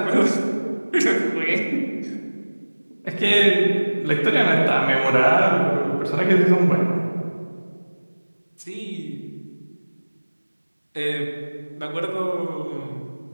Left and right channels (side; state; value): both; inverted; correlation -1.00